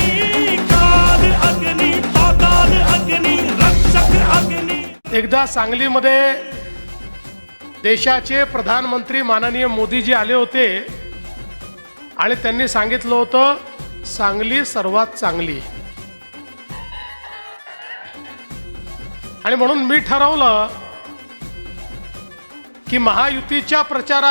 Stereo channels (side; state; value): both; inverted; correlation -1.00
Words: काल अग्नि पाताल अग्नि रक्षक अग्नि। एकदा सांगलीमध्ये देशाचे प्रधानमंत्री माननीय मोदीजी आले होते आणि त्यांनी सांगितलं होतं सांगली सर्वात चांगली, आणि म्हणून मी ठरवलं की महायुतीच्या